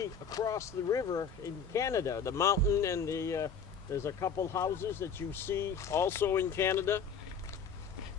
across the river in Canada, the mountain, and there's a couple houses that you see also in Canada.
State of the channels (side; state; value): right; quieter; 6.0 dB